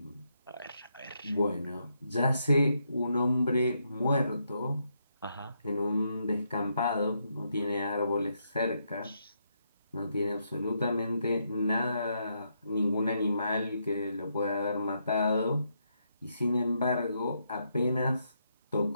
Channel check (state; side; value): inverted; both; correlation -0.79